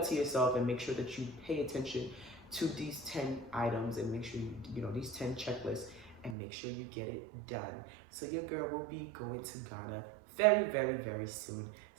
to yourself, and make sure that you pay attention to these 10 items and make sure these 10 checklists, and make sure you get it done. So your girl will be going to Ghana very, very, very soon.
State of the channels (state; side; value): drops out; left; at 6.4 s